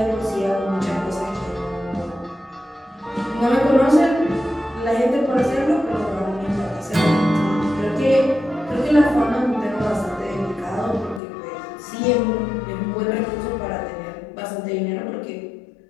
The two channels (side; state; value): right; drops out; at 11.2 s